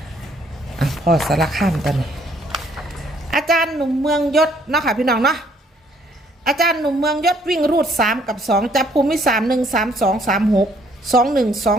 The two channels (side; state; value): both; normal; correlation 0.65